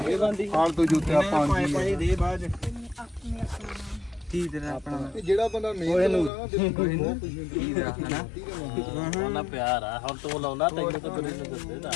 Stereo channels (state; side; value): drops out; right; at 6.3 s